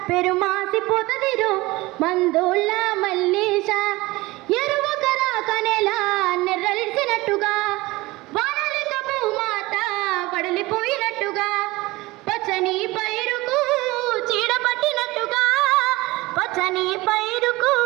పెరుమాసిపోతదిరో మందోళ్ళ మల్లేశ ఎరువకరా కనెలా నెర్రలిసినట్టుగా వానలిక భూమాత పడలిపోయినట్టుగా పచ్చని పైరుకు చీడపట్టినట్టుగా పచ్చని పైరుకు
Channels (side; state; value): left; quieter; 20.8 dB